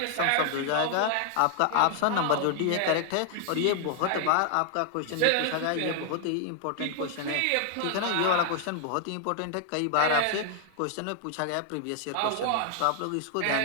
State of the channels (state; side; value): different; both; correlation 0.00